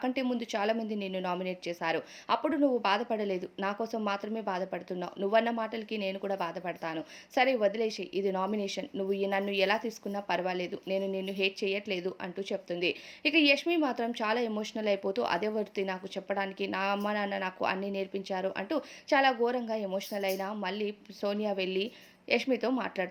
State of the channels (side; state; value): both; identical; correlation 1.00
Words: ముందు చాలా మంది నిన్ను నామినేట్ చేశారు, అప్పుడు నువ్వు బాధపడలేదు, నా కోసం మాత్రమే బాధపడుతున్నావు, నువ్వన్న మాటలకి నేను కూడా బాధపడతాను, సరే వదిలేసి, ఇది నామినేషన్, నువ్వు నన్ను ఎలా తీసుకున్నా పర్వాలేదు, నేను నిన్ను హేట్ చేయట్లేదు అంటూ చెప్తుంది. ఇక యష్మి మాత్రం చాలా ఎమోషనల్ అయిపోతూ అదే వర్తి నాకు చెప్పడానికి, నా అమ్మ నాన్న నాకు అన్నీ నేర్పించారు అంటూ చాలా ఘోరంగా ఎమోషనల్ అయినా మళ్ళీ సోనియా వెళ్ళి యష్మితో